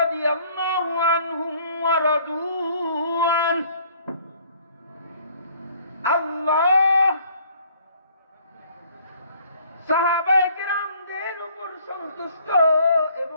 রাদিয়াল্লাহু আনহুম ওয়া রাদু আন। আল্লাহ সাহাবায়ে কেরামদের উপর সন্তুষ্ট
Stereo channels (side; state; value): both; inverted; correlation -0.59